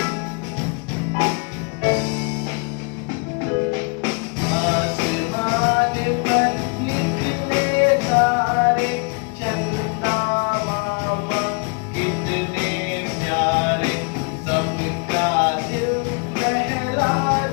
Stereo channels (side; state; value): right; quieter; 34.1 dB